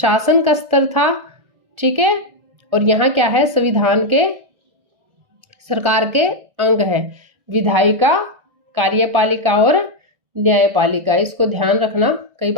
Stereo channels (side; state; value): left; late; 1.4 ms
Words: का स्तर था, ठीक है, और यहाँ क्या है? संविधान के सरकार के अंग है, विधायिका, कार्यपालिका और न्यायपालिका। इसको ध्यान रखना, कई